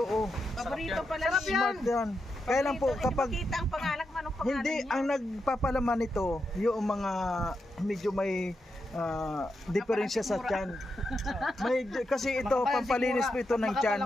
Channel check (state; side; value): normal; both; correlation 0.85